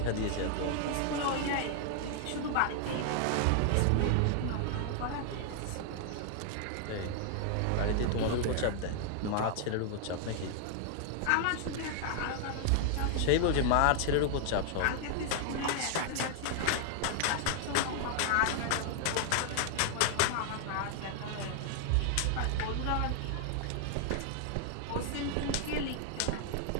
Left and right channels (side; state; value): both; different; correlation 0.00